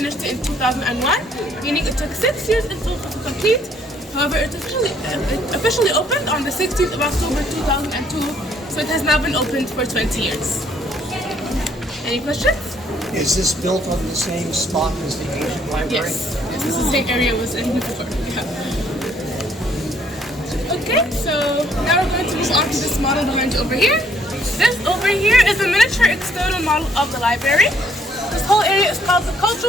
it in 2001, meaning it took 6 years in total to complete. However, it officially opened on the 16th of October 2002, so it has now been opened for 20 years. Any questions? Is this built on the same spot as the ancient library? Yes, this is the same area it was in before. Yeah. Okay, so now we're going to move on to this model behind you over here. This over here is a miniature external model of the library. This whole area is called the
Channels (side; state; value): both; normal; correlation 0.65